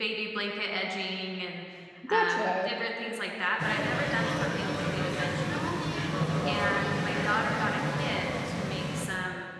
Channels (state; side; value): identical; both; correlation 1.00